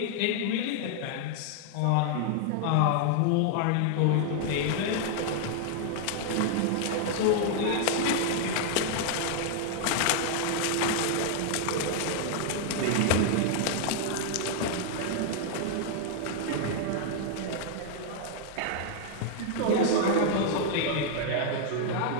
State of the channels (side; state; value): both; different; correlation 0.00